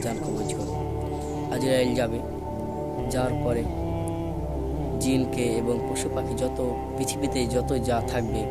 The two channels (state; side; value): identical; both; correlation 1.00